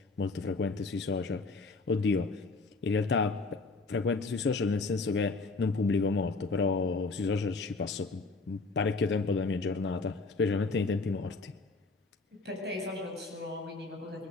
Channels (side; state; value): right; quieter; 3.8 dB